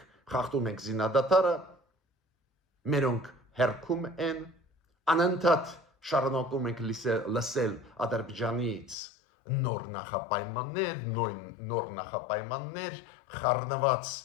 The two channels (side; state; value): right; drops out; at 9.0 s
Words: խախտում ենք զինադատարը, մերոնք հերքում են, անընդհատ շարունակում ենք լսել Ադրբեջանից նոր նախապայմաններ, խառնված